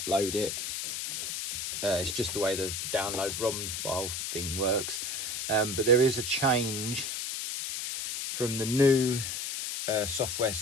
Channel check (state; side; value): noise; left; hiss, 4 dB below the sound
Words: it. It's just the way the download ROM file thing works. But there is a change from the new software